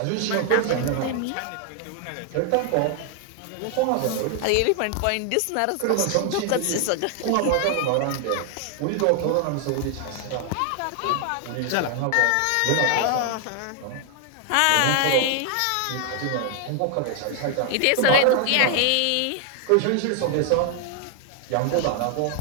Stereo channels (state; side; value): different; both; correlation 0.00